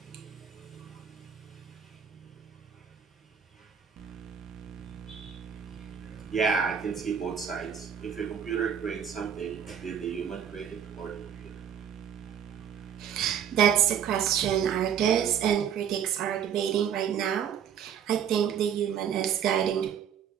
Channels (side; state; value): left; quieter; 8.5 dB